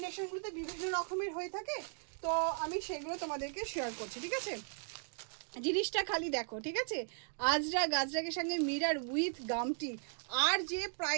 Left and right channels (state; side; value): silent; left; 53 dB below the other